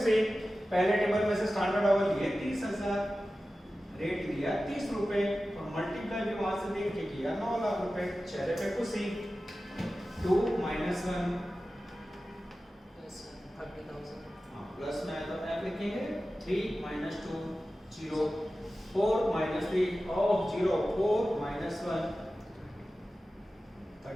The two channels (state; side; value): normal; both; correlation 0.95